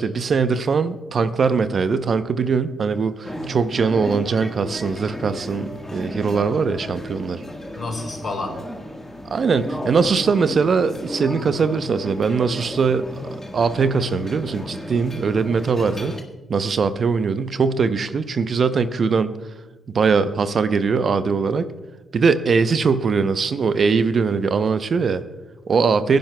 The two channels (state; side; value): quieter; left; 4.6 dB